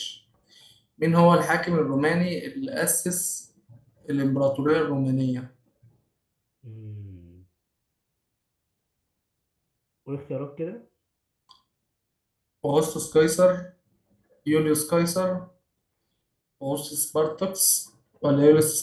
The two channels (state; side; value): identical; both; correlation 1.00